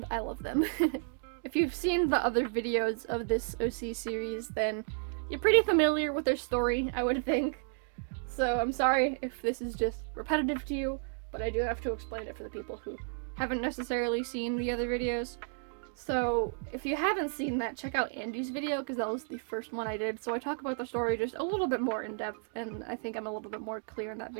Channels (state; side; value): silent; left; 56 dB below the other